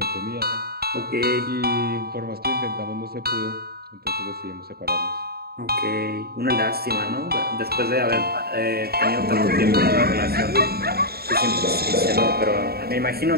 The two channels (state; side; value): late; left; 0.45 ms